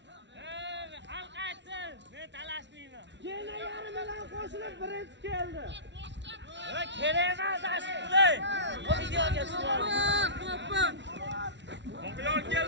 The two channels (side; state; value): left; late; 0.52 ms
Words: Xalq aytsin, men talashmayman. Gene yarim bilan qo'shilib birinchi keldi. Va kerak emas asli. Bu videoga tushirdim. Oqyol